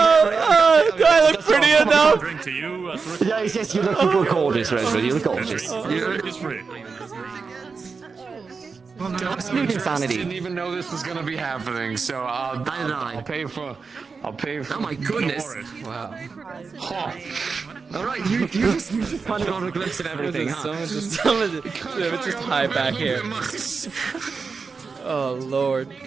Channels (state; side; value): quieter; left; 4.9 dB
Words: Do I look pretty enough? Drink to you. Yes, you look gorgeous, Rosewood. You look gorgeous. It's free. Sleep insanity. Didn't even know this was gonna be happening, so I'll pay for. Oh my goodness! Wow. All right, you just find on a glimpse of everything. Someone just hide back here. Oh lord.